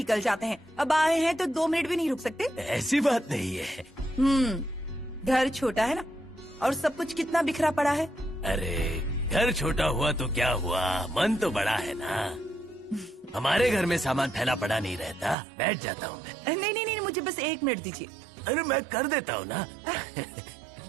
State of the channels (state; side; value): drops out; left; at 15.4 s